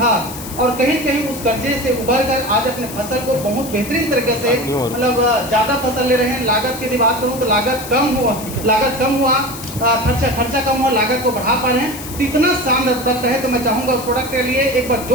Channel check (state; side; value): noise; left; hiss, 12 dB below the sound